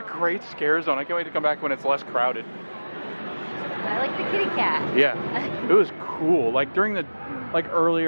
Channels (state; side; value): inverted; both; correlation -1.00